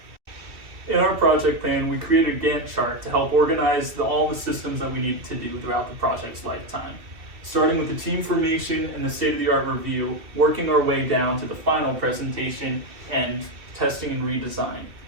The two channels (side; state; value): left; late; 2.4 ms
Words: In our project plan, we created a Gantt chart to help organize all the systems that we needed to do throughout the project's lifetime. Starting with the team formation and the state-of-the-art review, working our way down to the final presentation and testing and redesign.